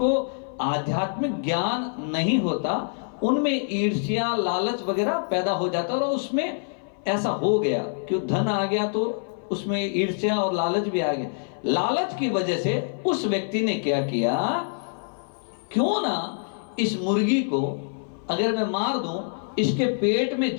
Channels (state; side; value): silent; right; 57 dB below the other